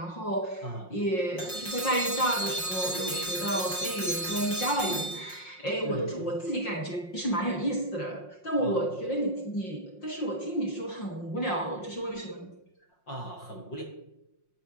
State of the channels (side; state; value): right; late; 5.6 ms